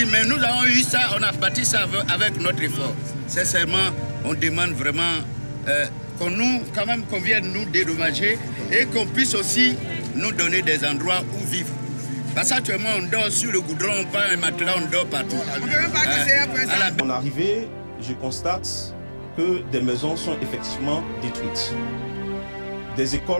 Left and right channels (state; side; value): inverted; both; correlation -1.00